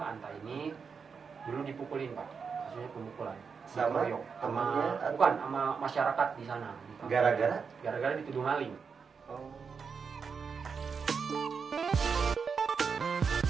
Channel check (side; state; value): left; quieter; 5.8 dB